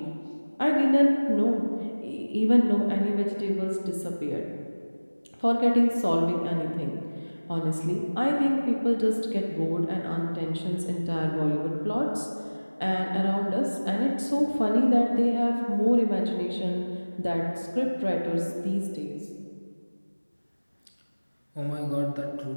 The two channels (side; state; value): both; inverted; correlation -1.00